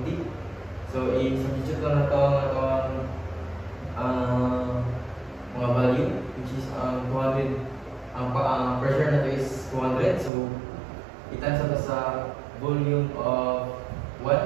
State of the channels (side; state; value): left; drops out; at 10.3 s